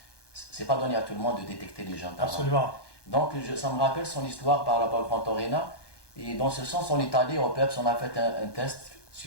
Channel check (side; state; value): right; late; 1.2 ms